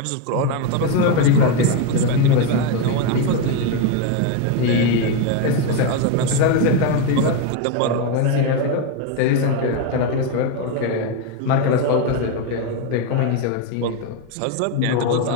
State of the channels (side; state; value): both; different; correlation 0.02